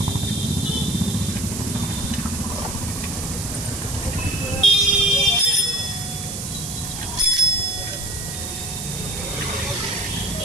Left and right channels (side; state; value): right; noise; hiss, 6 dB below the sound